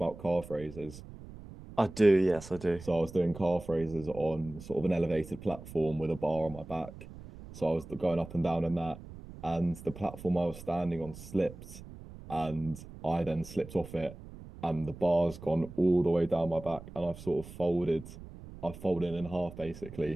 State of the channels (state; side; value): noise; right; rumble, 15 dB below the sound